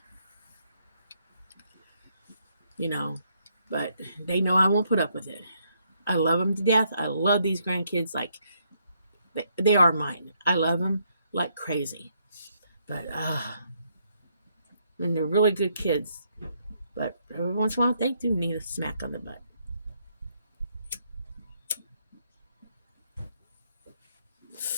You know, but they know I won't put up with it. I love them to death. I love these grandkids like they are mine. I love them like crazy. But, and they're really good kids. But every once in a while, they do need a smack on the butt.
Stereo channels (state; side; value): inverted; both; correlation -0.74